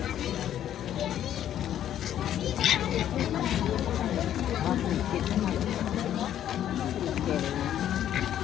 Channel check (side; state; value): right; quieter; 10.9 dB